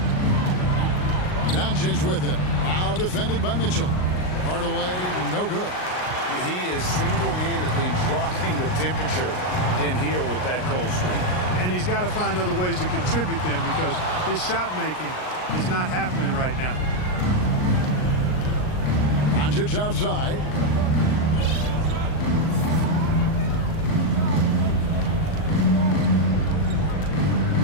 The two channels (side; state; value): right; late; 39 ms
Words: Doncic with it. Now defended by Mitchell. Hardaway, no good. He is single-handedly dropping the temperature in here with that cold streak. And he's got to find other ways to contribute then, because his shot making is not happening right now. Doncic outside.